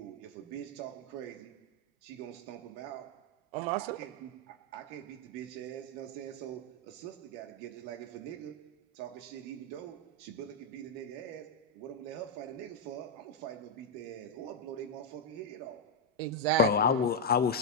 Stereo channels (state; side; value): normal; both; correlation 0.02